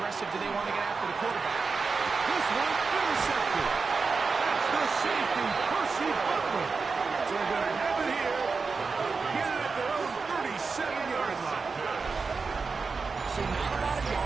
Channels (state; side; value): quieter; left; 4.6 dB